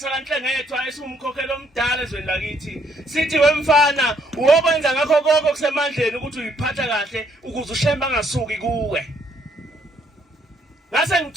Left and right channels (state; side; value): normal; both; correlation 0.69